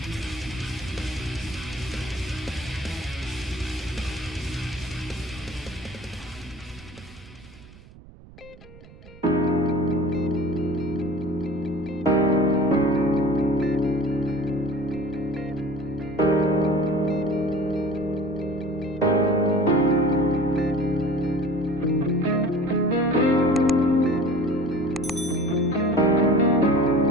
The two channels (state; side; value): noise; right; rumble, 21 dB below the sound